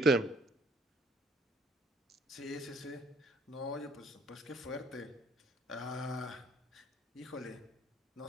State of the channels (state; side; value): normal; both; correlation 0.59